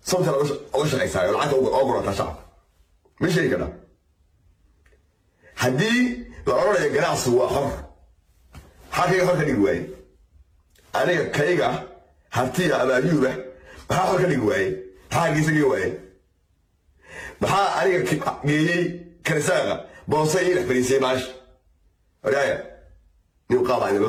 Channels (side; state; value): both; identical; correlation 1.00